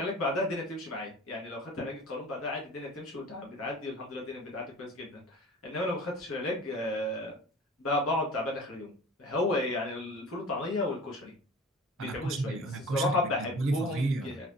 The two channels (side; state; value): both; normal; correlation 0.42